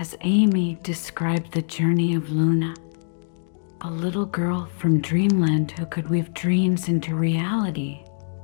Amy described the journey of Luna, a little girl from Dreamland who could weave dreams into reality,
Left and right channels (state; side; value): silent; right; digital silence